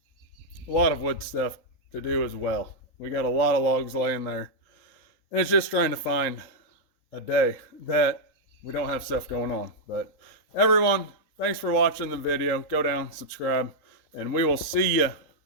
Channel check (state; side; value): late; right; 3.8 ms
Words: a lot of wood stuff to do as well. We got a lot of logs laying there. And it's just trying to find a day that we don't have stuff going on. But everyone, thanks for watching the video. Go down, subscribe, and we will see you